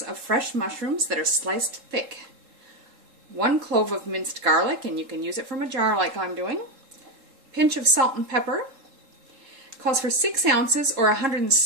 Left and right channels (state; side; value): late; left; 3.8 ms